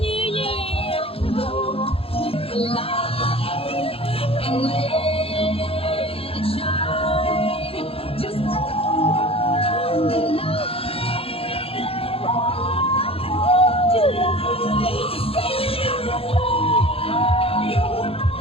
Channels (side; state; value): right; late; 0.27 ms